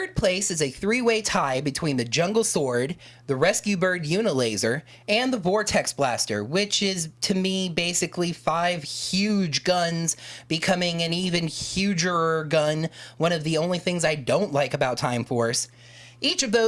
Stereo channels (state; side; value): identical; both; correlation 1.00